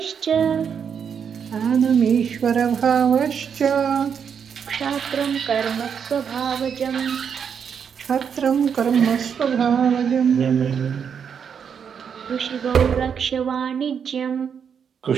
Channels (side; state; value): left; quieter; 7.2 dB